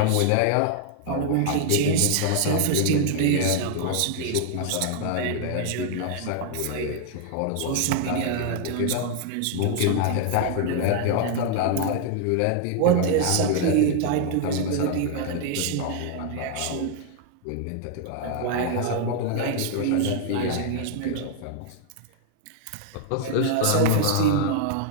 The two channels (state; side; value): different; both; correlation 0.00